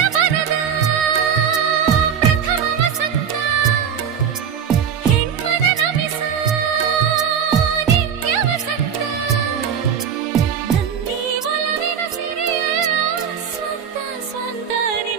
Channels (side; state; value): left; quieter; 7.7 dB